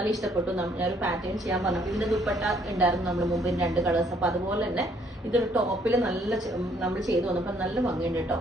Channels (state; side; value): normal; both; correlation 0.65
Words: ഇഷ്ടപ്പെട്ടു. ഞാനൊരു പാറ്റേൺ ചെയ്യാൻ പറഞ്ഞു. ഇതിന്റെ ദുപ്പട്ട ഉണ്ടായിരുന്നു നമ്മൾ മുമ്പ് 2 കളേഴ്സ്. അപ്പൊ അതുപോലെ തന്നെ ഇതൊരു ടോപ്പിൽ നല്ല നമ്മൾ ചെയ്തു വന്നപ്പോൾ നല്ല ഭംഗിയുണ്ട് കേട്ടോ.